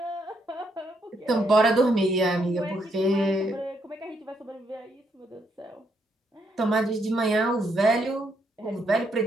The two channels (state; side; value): normal; both; correlation 0.75